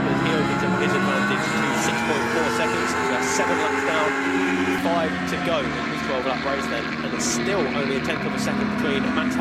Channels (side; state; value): both; identical; correlation 1.00